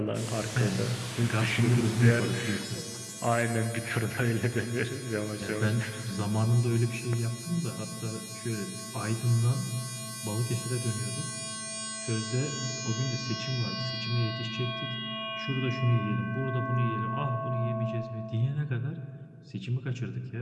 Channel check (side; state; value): both; identical; correlation 1.00